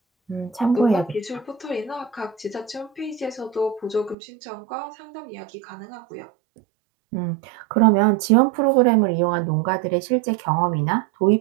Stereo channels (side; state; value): left; drops out; at 4.2 s